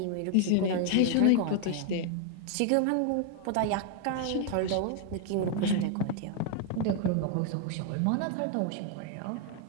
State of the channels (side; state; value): both; different; correlation 0.00